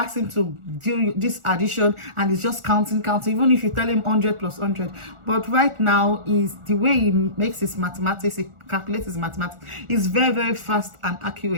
him to do this addition and he's just counting, even if you tell him 100 plus 100. But right now, is the way he makes his mathematics, he calculates his mathematics, is very fast and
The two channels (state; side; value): late; left; 1.4 ms